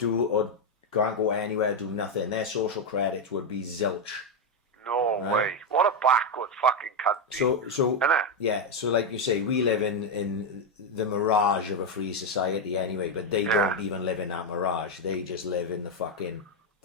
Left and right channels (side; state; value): both; normal; correlation 0.05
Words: or can't go anywhere, do nothing. Their social credits would be zilch. No way. What a backward fucking country. So yeah, so like you say, we live in the mirage of a free society anyway, but they don't even live in that mirage. They just live in